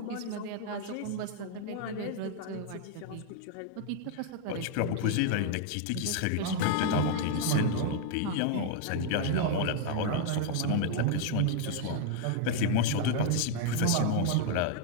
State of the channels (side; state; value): both; different; correlation 0.00